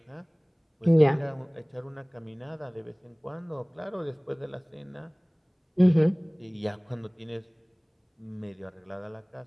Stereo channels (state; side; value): identical; both; correlation 1.00